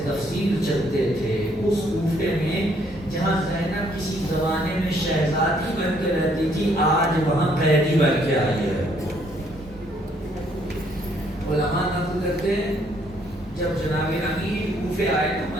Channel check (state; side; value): normal; both; correlation 0.67